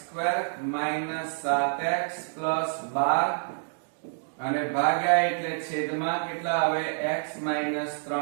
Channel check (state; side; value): silent; left; digital silence